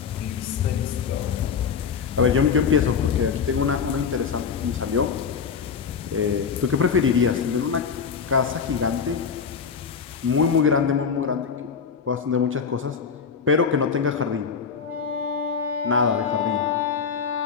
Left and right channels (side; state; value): right; quieter; 6.2 dB